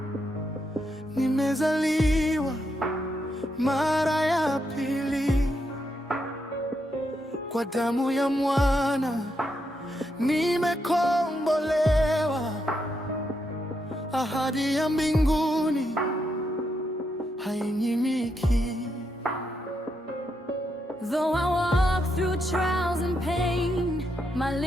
nimezaliwa mara ya pili. Kwa damu ya mwana nimekombolewa, ahadi ya mbinguni hainyimiki. Though I walk through trials and pain, my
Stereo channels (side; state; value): both; normal; correlation 0.81